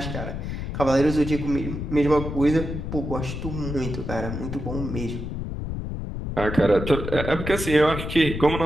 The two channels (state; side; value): noise; left; rumble, 5 dB below the sound